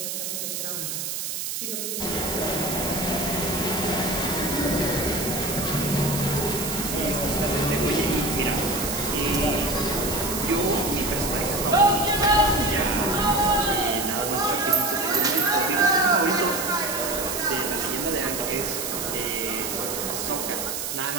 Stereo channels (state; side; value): noise; right; hiss, 4 dB below the sound